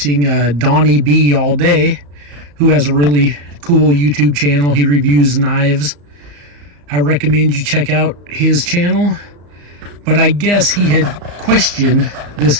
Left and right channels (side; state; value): left; late; 34 ms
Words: Donnie B all day, who has a really cool YouTube channel. He reviews knives. I recommend you check out his channel. But I guess he had questioned this